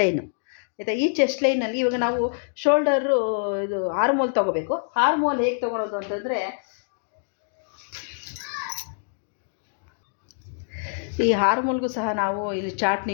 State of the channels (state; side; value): silent; right; digital silence